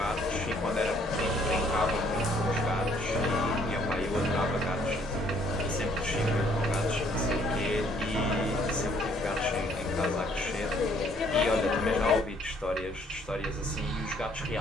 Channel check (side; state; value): both; normal; correlation 0.64